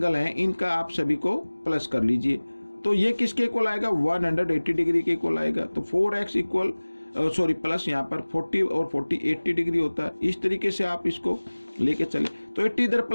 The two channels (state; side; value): inverted; both; correlation -1.00